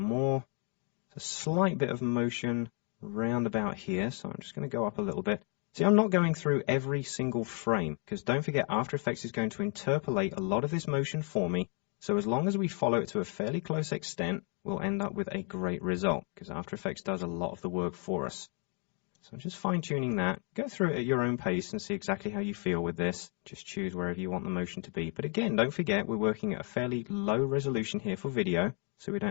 A slight bit of motion round about here, so I'm just going to go up a little bit. See, I'm not going through every single frame, because don't forget After Effects is going to interpolate a lot of this motion for me, so as long as we follow it to a fairly close extent, we'll end up with a great result, because After Effects does a lot of the work for us. So I'm just fine-tuning that. Go through it at your own pace and see exactly how you feel with this. Just choose wherever you want the motion to be. But again, don't forget we're working at a fairly low resolution here for video, so we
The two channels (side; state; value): right; quieter; 39.0 dB